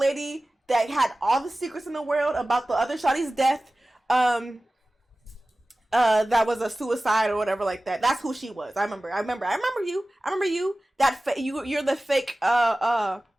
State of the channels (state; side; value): normal; both; correlation 0.97